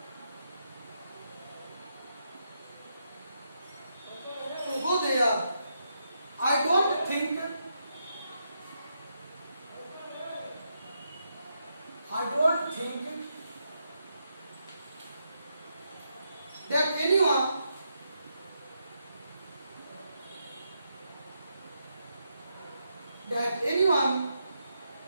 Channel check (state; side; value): inverted; both; correlation -0.81